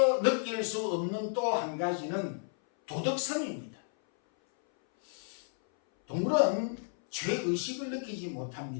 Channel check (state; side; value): silent; right; 56 dB below the other